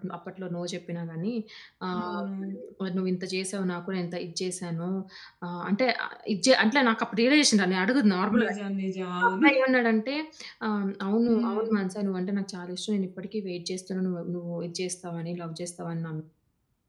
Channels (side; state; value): both; identical; correlation 1.00